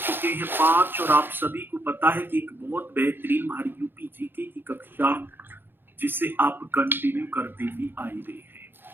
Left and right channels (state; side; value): late; left; 0.10 ms